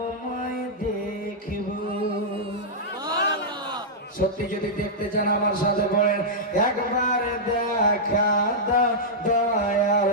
দেখিব। সত্যি যদি দেখতে চান আমার সাথে বলেন, একবার দেখা দাও দয়ার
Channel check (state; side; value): normal; both; correlation -0.09